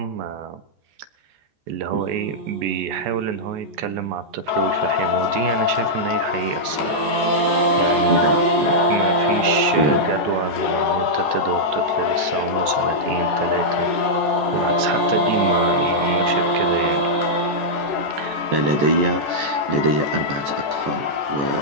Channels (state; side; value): late; left; 14 ms